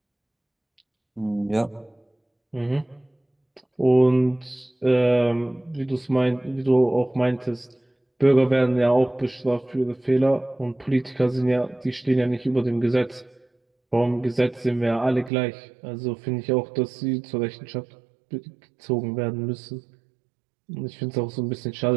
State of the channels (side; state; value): left; drops out; at 15.3 s